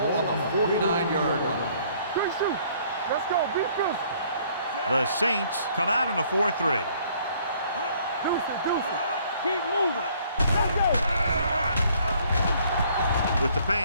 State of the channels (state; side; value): inverted; both; correlation -0.61